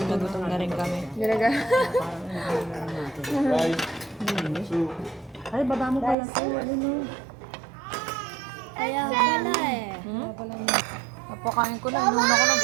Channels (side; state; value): left; drops out; at 6.2 s